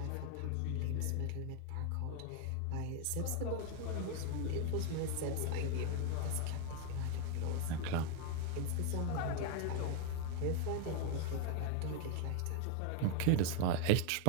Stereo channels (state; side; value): different; both; correlation 0.01